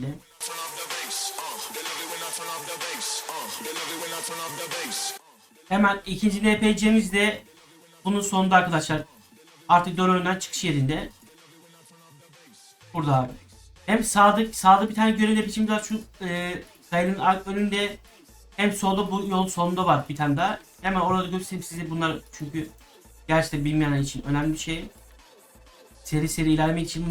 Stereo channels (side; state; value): both; identical; correlation 1.00